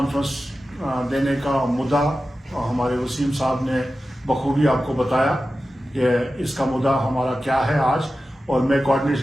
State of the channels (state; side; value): normal; both; correlation 0.94